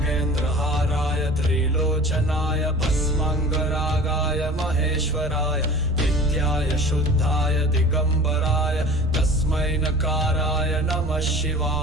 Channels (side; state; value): right; noise; rumble, 7 dB below the sound